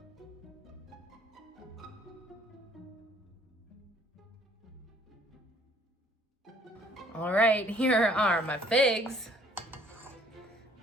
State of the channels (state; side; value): normal; both; correlation 0.60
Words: All right, here are my figs.